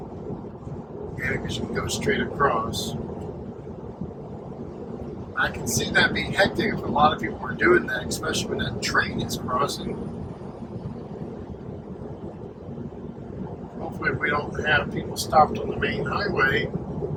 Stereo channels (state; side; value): identical; both; correlation 1.00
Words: and because you can go straight across. I can see that being hectic if a lot of people are doing that, especially when that train is crossing. Hopefully we don't have people stopped on the main highway